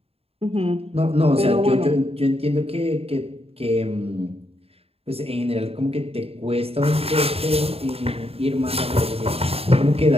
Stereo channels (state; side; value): late; left; 0.29 ms